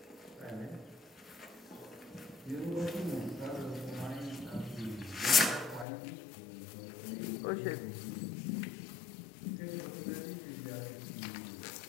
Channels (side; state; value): right; drops out; at 5.9 s